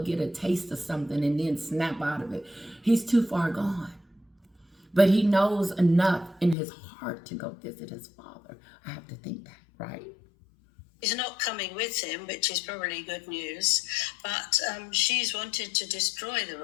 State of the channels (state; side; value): drops out; right; at 6.6 s